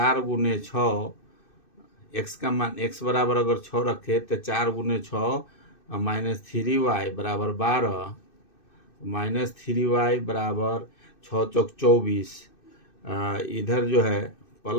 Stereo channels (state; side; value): late; right; 2.6 ms